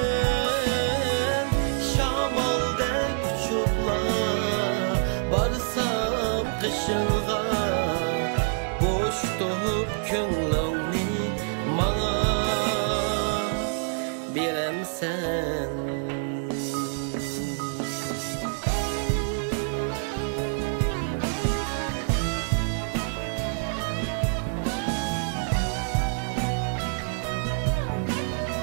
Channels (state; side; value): silent; left; digital silence